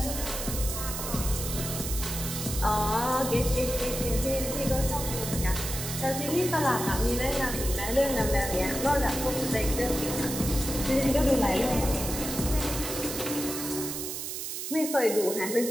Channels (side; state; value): right; noise; hiss, 5 dB below the sound